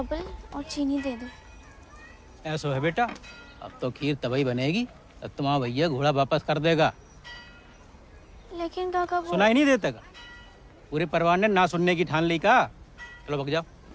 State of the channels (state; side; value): identical; both; correlation 1.00